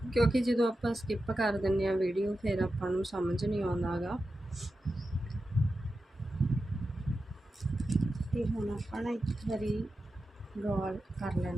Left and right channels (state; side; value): normal; both; correlation 0.91